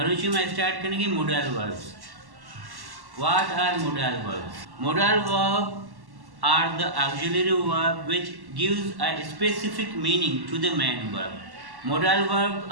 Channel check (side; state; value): left; late; 1.1 ms